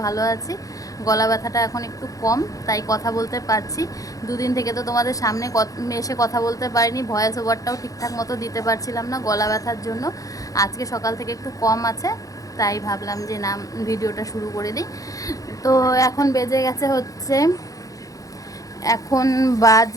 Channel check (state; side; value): late; right; 0.17 ms